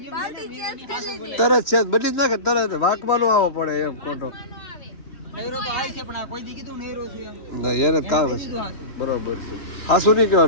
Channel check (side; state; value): right; late; 3.1 ms